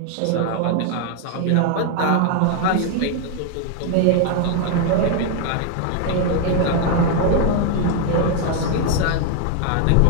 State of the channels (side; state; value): both; different; correlation 0.01